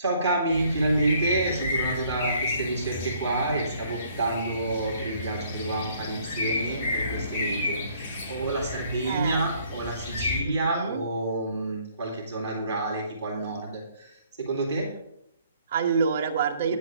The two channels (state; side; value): inverted; both; correlation -0.63